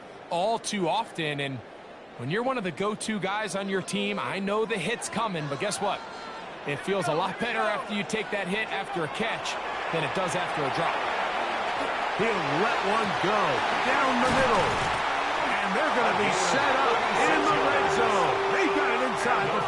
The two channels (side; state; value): both; identical; correlation 1.00